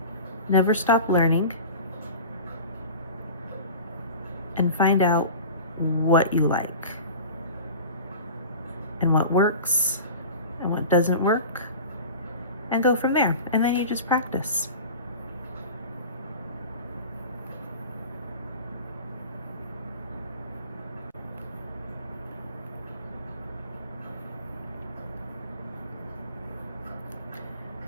Never stop learning. And find out what you like and what works and what doesn't work, and go from there. And then you just practice.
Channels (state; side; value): inverted; both; correlation -0.35